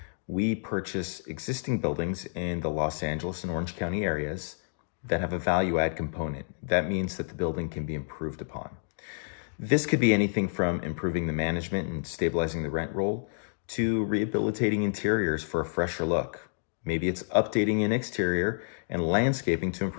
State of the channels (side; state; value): right; silent; digital silence